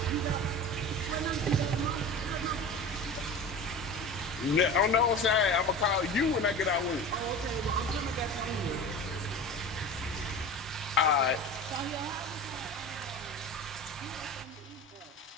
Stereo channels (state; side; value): normal; both; correlation 0.33